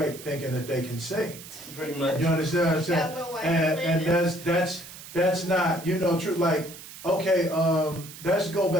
thinking that they can sing. Pretty much. You understand what I'm saying? Yeah, Lil Wayne And that's not, you know, true. Like Okay, let's go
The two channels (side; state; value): right; noise; hiss, 15 dB below the sound